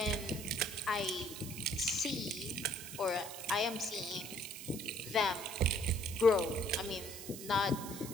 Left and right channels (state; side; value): noise; right; hiss, 11 dB below the sound